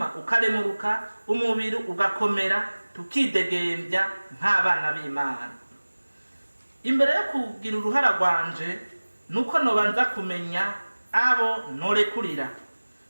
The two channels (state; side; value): inverted; both; correlation -1.00